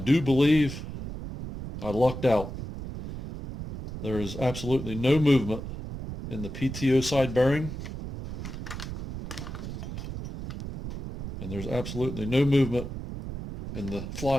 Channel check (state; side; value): noise; right; rumble, 8 dB below the sound